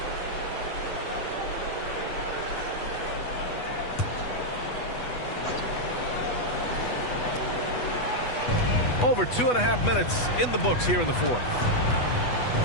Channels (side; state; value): right; late; 8.2 ms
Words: Over 2.5 minutes in the books here in the fourth.